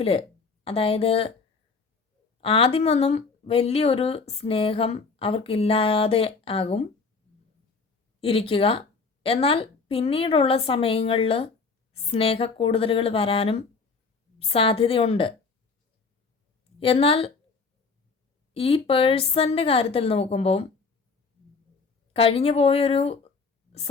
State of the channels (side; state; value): right; quieter; 4.6 dB